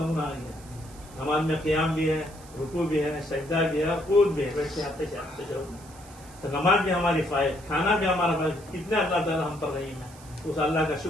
آ گیا، نماز میں قیام بھی ہے، رکوع بھی ہے، سجدہ بھی ہے، قوت بھی ہے، بیٹھتے آتے تو نماز بھی ہماری فائد، کھانا بھی ہمارا فائد، کتنے اللہ تعالیٰ ہم پر رحیم ہے، اس اللہ کا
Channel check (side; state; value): right; noise; hiss, 22 dB below the sound